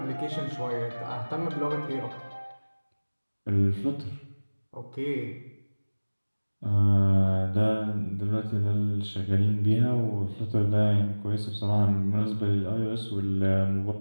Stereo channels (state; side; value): inverted; both; correlation -1.00